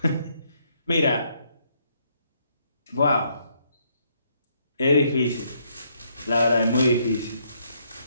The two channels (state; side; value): inverted; both; correlation -0.72